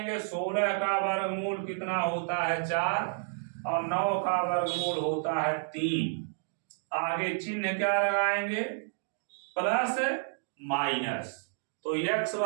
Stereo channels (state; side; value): silent; left; digital silence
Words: 16 का वर्गमूल कितना होता है 4 और 9 का वर्गमूल होता है 3। आगे चिन्ह क्या लगाएंगे प्लस माइनस, तो x